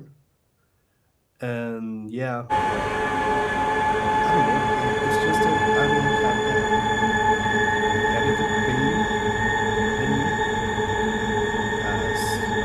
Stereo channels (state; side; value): identical; both; correlation 1.00